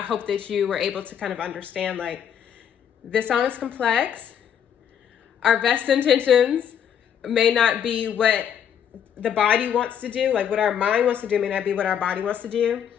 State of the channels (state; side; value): quieter; right; 8.7 dB